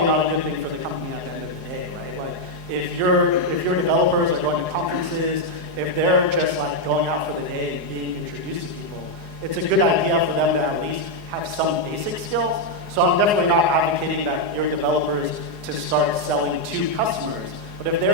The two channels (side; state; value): left; late; 4.8 ms